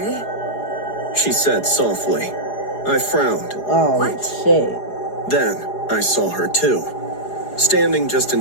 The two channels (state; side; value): late; right; 4.9 ms